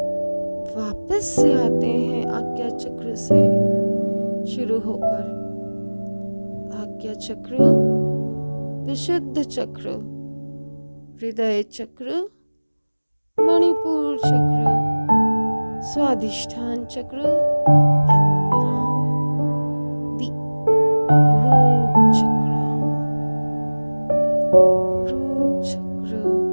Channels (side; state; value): both; inverted; correlation -1.00